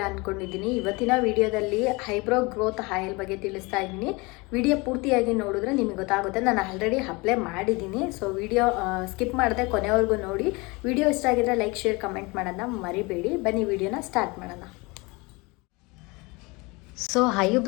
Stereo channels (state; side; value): quieter; right; 25.8 dB